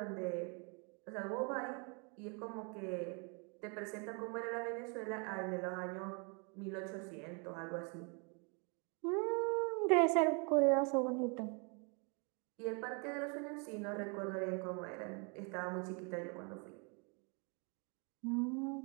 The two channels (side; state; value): left; quieter; 34.7 dB